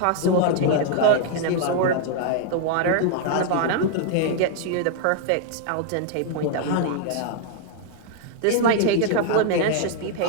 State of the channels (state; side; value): different; both; correlation 0.00